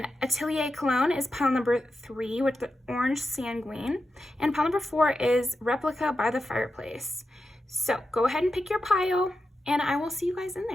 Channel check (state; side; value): normal; both; correlation 0.89